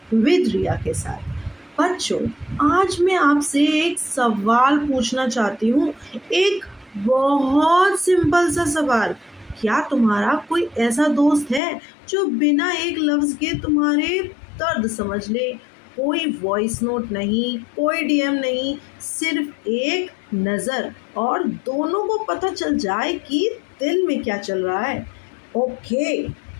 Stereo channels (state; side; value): drops out; right; at 11.6 s